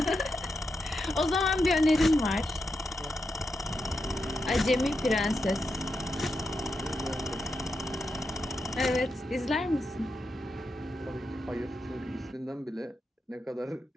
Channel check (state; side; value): normal; both; correlation 0.86